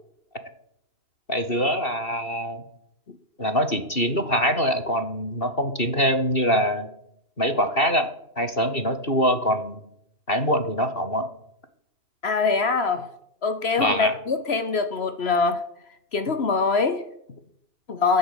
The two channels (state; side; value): late; right; 3.0 ms